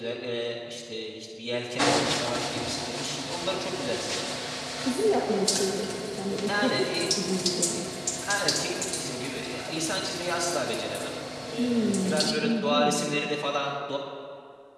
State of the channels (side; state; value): both; identical; correlation 1.00